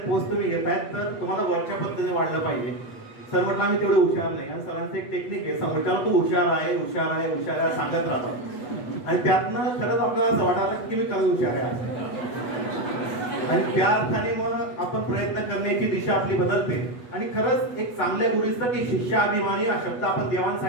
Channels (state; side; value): late; right; 8.2 ms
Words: पोस्ट तुम्ही घेतायत, तर तुम्हाला वरच्या पद्धतीने वाढलं पाहिजे. सर म्हटलं आम्ही तेवढे हुशार नाही. आणि सरांचं एक टेक्निक आहे, समोरच्याला तू हुशार आहे हुशार आहे हुशार आहे सांगत राहतात आणि त्यातनं खरंच आपल्याला असं वाटायला की मी खरंच हुशार आहे आणि त्या अर्थाने मग आपण प्रयत्न करण्याची दिशा आपली बदलते. आणि खरंच एक चांगल्या गुरुचं की शिष्याभिमानी हा शब्द आपण